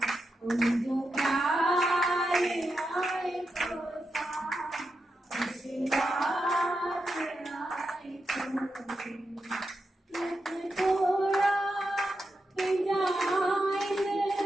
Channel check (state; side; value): normal; both; correlation 0.87